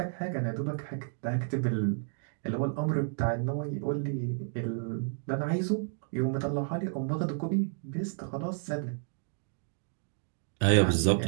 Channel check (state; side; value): silent; left; digital silence